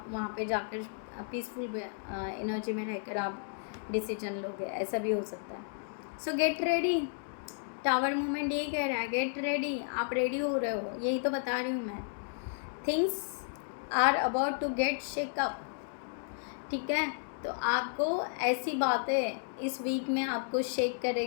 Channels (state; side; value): silent; right; digital silence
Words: वहाँ पे जाकर पीसफुल एनर्जी में रहकर आप डिसीजन लोगे, ऐसा भी हो सकता है। सो गेट रेडी, टावर मूवमेंट यही कह रहा है, गेट रेडी, आप रेडी हो रहे हो, यही तो बता रही हूँ मैं। Things are about to get shake up, ठीक है। तो आपको ऐसी बातें इस वीक में आपको शेक